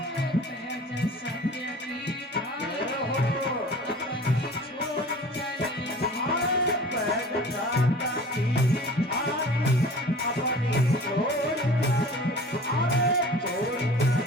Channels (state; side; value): normal; both; correlation 0.42